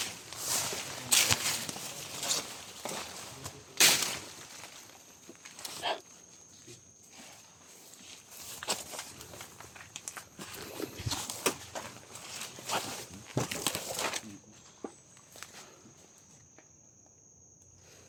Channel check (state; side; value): identical; both; correlation 1.00